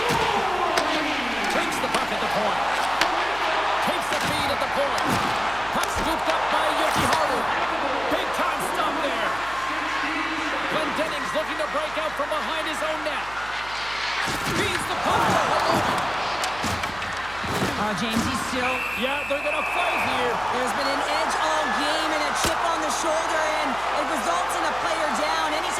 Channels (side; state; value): right; noise; hum, 17 dB below the sound